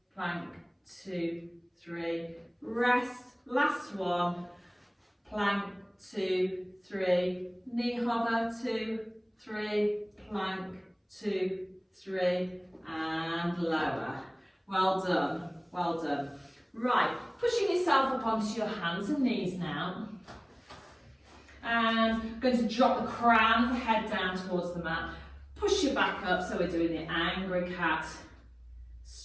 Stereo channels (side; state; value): both; identical; correlation 1.00